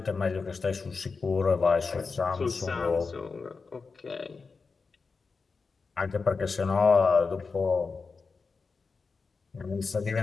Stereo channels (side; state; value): right; quieter; 4.6 dB